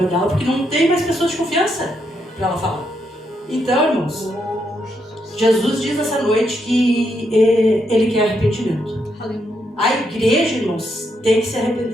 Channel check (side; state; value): both; normal; correlation 0.79